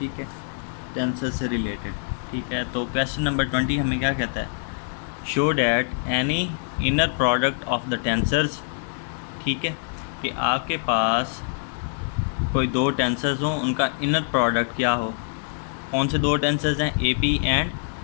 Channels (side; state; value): right; silent; digital silence